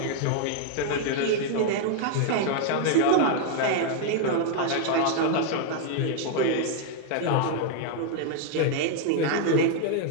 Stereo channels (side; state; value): both; different; correlation 0.00